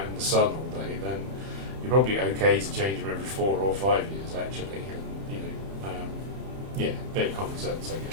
in the sun all day, then you're probably okay to change them every 4 or 5 years, actually. And, bit of common sense, I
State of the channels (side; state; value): left; late; 31 ms